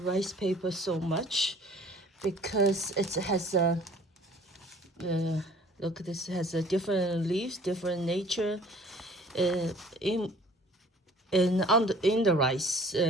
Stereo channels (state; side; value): normal; both; correlation 0.51